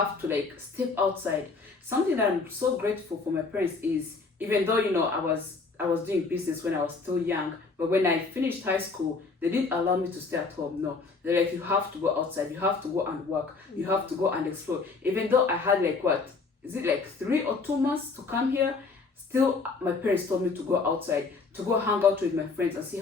to like step outside. Something that I'm so grateful for my parents is, even though, I was doing business when I was still young, but when I finished high school, they didn't allow me to stay at home. No, they're like, you have to go outside, you have to go and work, you have to go and explore. Even though I had like 3 or 2 months to come here, still my parents told me to go outside, to go hang out with my friends and see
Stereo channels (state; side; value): quieter; right; 4.3 dB